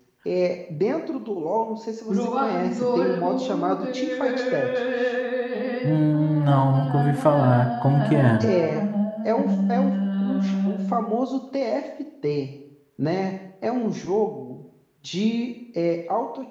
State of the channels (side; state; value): both; identical; correlation 1.00